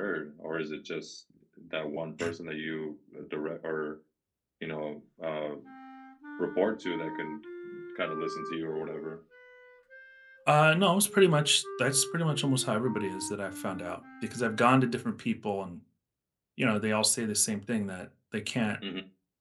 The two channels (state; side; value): identical; both; correlation 1.00